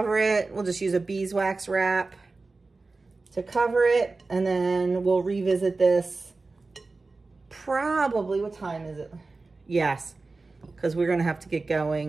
it. We'll just use a beeswax wrap to cover it, and then we'll revisit this probably, what time is it? Yes, because we're gonna have to get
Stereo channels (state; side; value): quieter; left; 3.7 dB